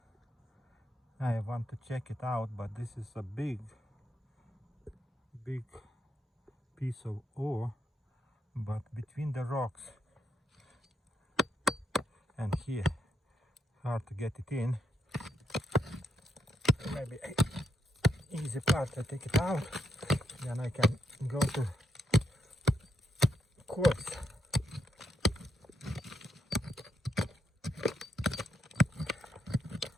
I want to check it out, but this is a big piece of ore, but between the rocks and here, hard to get it in. Maybe easy part, I take it out, then I can go to quartz.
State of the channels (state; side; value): normal; both; correlation 0.78